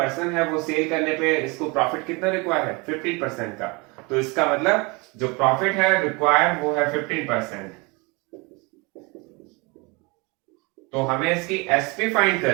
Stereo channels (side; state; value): left; quieter; 27.8 dB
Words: है, वो सेल करने पे इसको प्रॉफिट कितना रिक्वायर है 15% का। तो इसका मतलब जो प्रॉफिट है रिक्वायर वो है 15%। तो हमें इसकी एसपी फाइंड